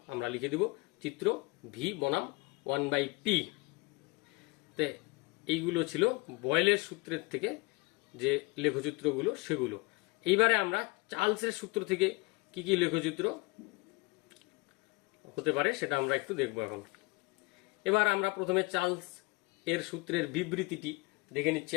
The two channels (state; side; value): quieter; right; 26.4 dB